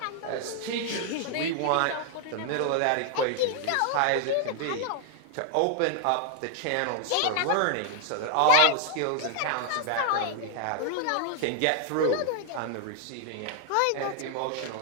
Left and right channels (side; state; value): both; different; correlation 0.00